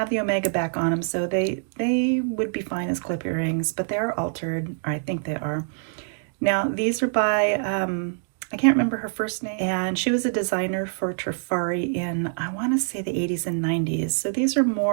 the omega back on them, so they would be fine as clip earrings, but they are altered, or I think they are. Now these are by I can't remember her first name, and she was a designer for Trifari in, I want to say, the 80s and 90s. So these are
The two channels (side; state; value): left; silent; digital silence